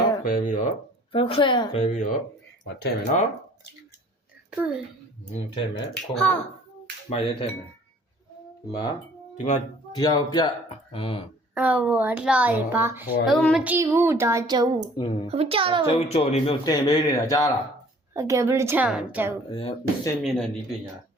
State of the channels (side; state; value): both; normal; correlation 0.53